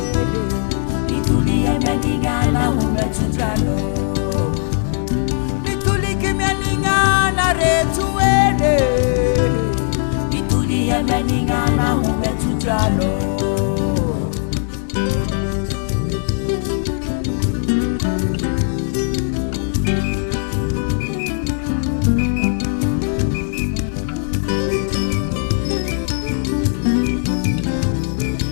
mitulia mianingana umetutalo, mitulike mianingana retue, mitulia mianingana umetutalo.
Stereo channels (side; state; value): right; silent; 66 dB below the other